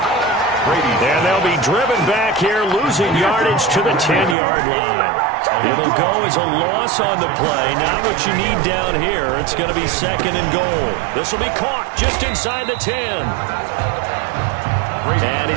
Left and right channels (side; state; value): left; drops out; at 4.4 s